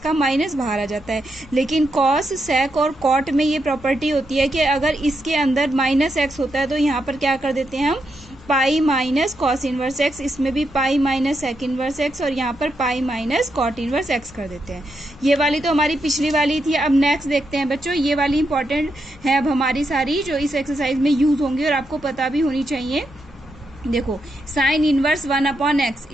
माइनस बाहर आ जाता है। लेकिन कॉस, सेक और कॉट में ये प्रॉपर्टी होती है कि अगर इसके अंदर माइनस एक्स होता है तो यहाँ पर क्या कर देते हैं हम, pi minus cos inverse x. इसमें भी pi minus sec inverse x और यहाँ पर pi minus cot inverse x कर देते हैं। ये वाली तो हमारी पिछली वाली थी। अब नेक्स्ट देखते हैं बच्चों, ये वाली इंपॉर्टेंट है अब हमारी सारी जो इस एक्सरसाइज में यूज होंगी और आपको पता भी होनी चाहिए। देखो, sine inverse 1/x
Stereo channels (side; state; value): left; noise; rumble, 22 dB below the sound